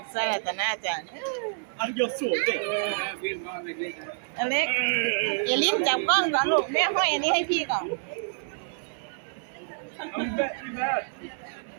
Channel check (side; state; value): left; silent; 59 dB below the other